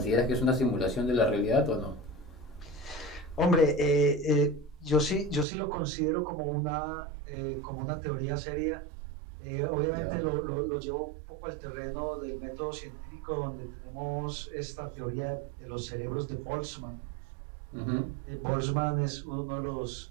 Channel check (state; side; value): drops out; left; at 5.5 s